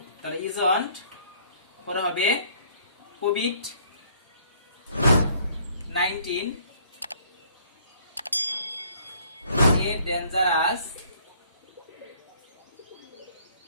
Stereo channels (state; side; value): inverted; both; correlation -0.60